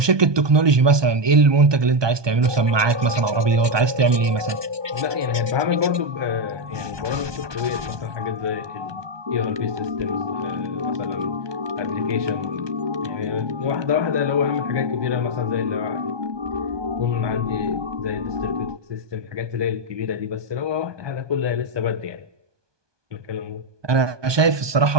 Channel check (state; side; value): late; left; 1.2 ms